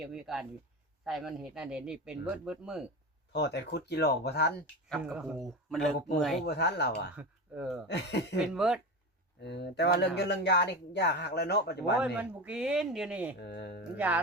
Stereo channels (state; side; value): normal; both; correlation 0.24